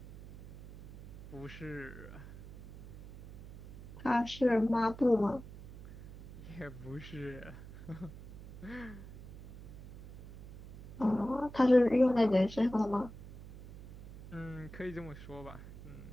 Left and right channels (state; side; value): noise; right; hum, 15 dB below the sound